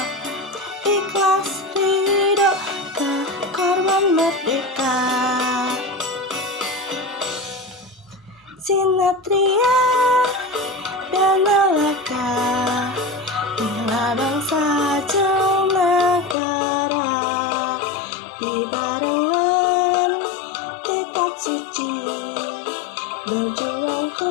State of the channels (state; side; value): drops out; right; at 16.4 s